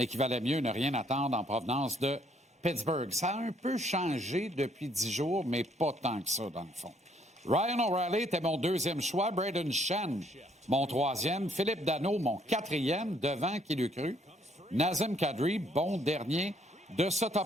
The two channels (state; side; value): normal; both; correlation 0.67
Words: qu'il valait mieux ne rien attendre en provenance de Pittsburgh. Ça a un peu changé depuis 10 jours, mais pas tant que ça, dans le fond. Ryan O'Reilly était mon deuxième choix, Braden Shen, mon troisième, Philippe Danault, mon quatrième, devant qui l'eût cru, Nazem Kadri, bon dernier de ce